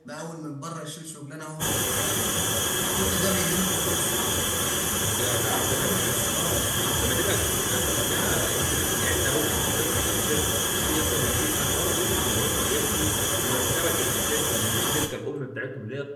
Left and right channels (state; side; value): identical; both; correlation 1.00